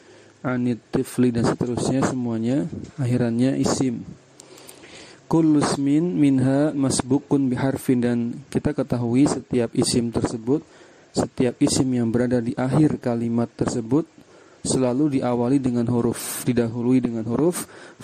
anit tifli dan seterusnya, semuanya akhirannya isim. Kullu ismin minha masbukun biharfin, dan kita ketahui setiap isim tersebut, setiap isim yang berada di akhir kalimat tersebut selalu diawali dengan huruf, didahului dengan huruf.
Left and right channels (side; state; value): both; identical; correlation 1.00